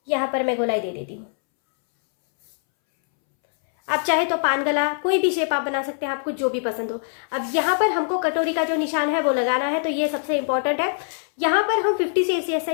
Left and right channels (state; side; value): silent; right; 62 dB below the other